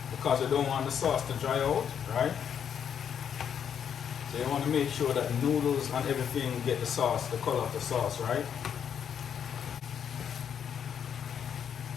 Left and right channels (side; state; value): right; quieter; 8.2 dB